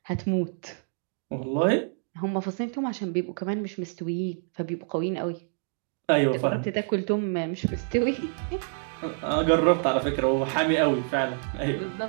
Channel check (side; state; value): left; silent; digital silence